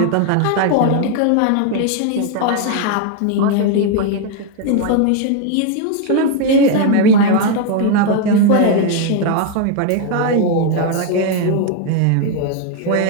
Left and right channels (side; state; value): both; different; correlation 0.01